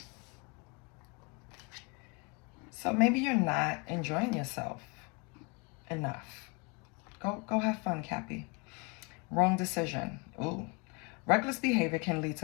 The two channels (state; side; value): quieter; right; 30.6 dB